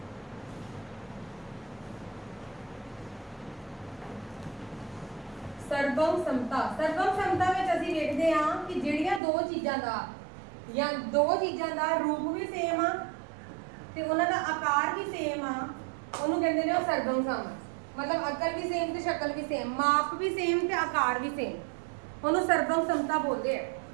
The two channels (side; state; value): left; drops out; at 9.2 s